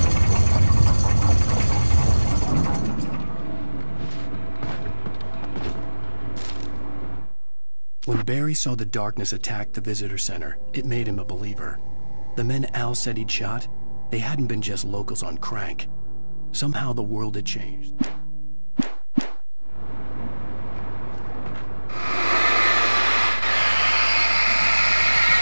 When Barry saw the darkness attack the visitor center, it made him a believer. The men Al said he'd shot, they hadn't been just locals on crank. Somehow the world had changed.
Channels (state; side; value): inverted; both; correlation -1.00